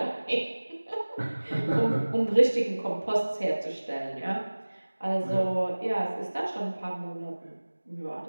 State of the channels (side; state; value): both; inverted; correlation -1.00